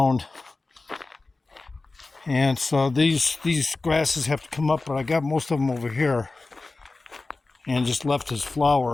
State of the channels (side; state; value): right; quieter; 3.5 dB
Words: And so these grasses have to come up, but I got most of them over here and just left his